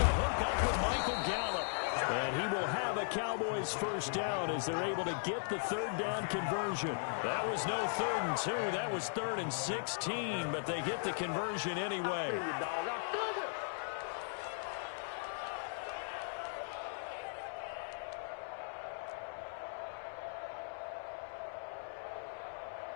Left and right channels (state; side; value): silent; right; 52 dB below the other